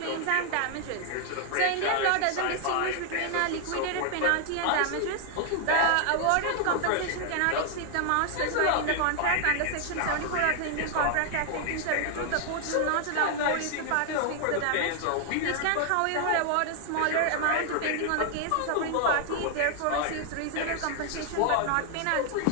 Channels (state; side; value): different; both; correlation 0.00